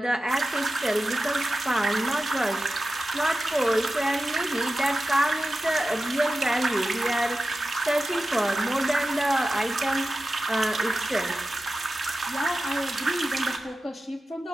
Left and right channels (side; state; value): both; normal; correlation 0.93